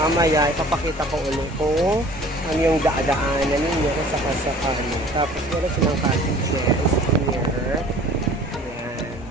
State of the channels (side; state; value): both; normal; correlation 0.49